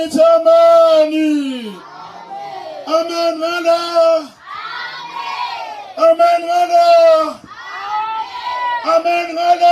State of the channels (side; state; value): both; identical; correlation 1.00